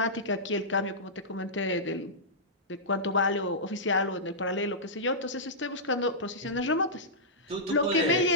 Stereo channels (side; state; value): both; normal; correlation -0.14